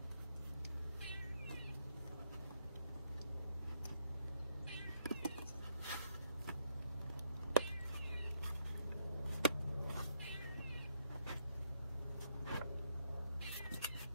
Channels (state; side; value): inverted; both; correlation -0.76